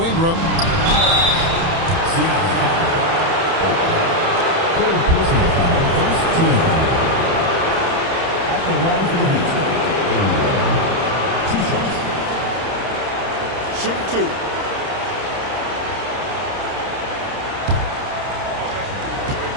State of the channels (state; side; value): late; left; 30 ms